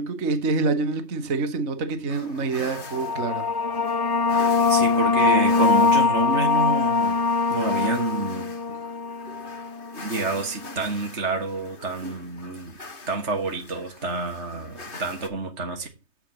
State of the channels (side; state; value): left; late; 3.2 ms